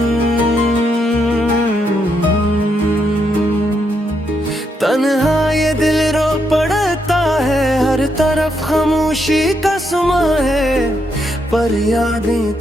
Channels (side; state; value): both; normal; correlation 0.79